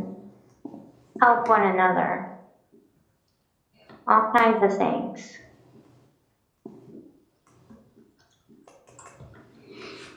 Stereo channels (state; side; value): identical; both; correlation 1.00